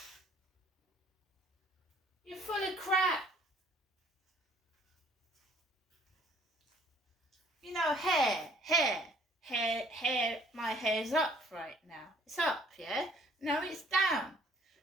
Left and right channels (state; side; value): normal; both; correlation 0.59